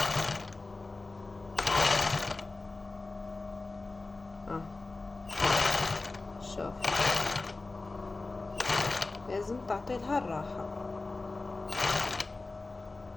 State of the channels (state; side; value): quieter; right; 3.4 dB